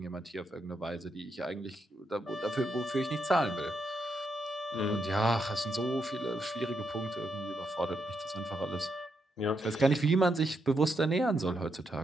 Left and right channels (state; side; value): normal; both; correlation 0.81